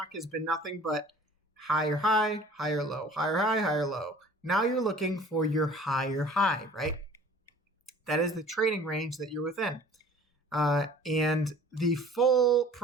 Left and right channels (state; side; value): normal; both; correlation 0.48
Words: has been nothing but higher high, higher low, higher high, higher low. Now you're looking for your higher high, right? That is the trading range that you're within. And the full